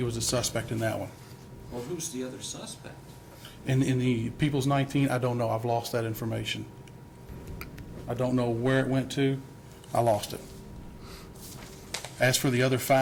was a suspect in that one. Well, who's the other suspect? In the People's 19, I don't know. I've lost that information. I don't know where it went to. I lost it. As for the other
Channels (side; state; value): both; identical; correlation 1.00